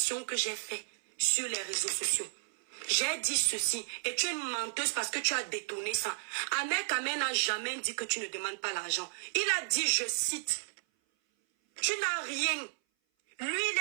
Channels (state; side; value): silent; left; 56 dB below the other